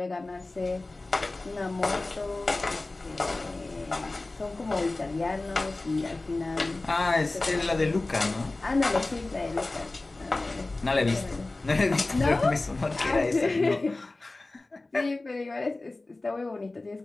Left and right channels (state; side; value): quieter; right; 3.1 dB